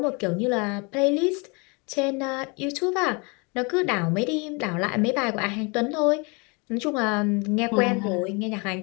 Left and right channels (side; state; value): right; quieter; 30.3 dB